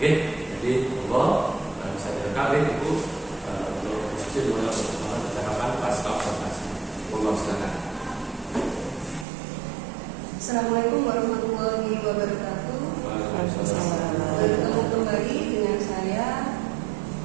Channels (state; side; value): drops out; left; at 9.2 s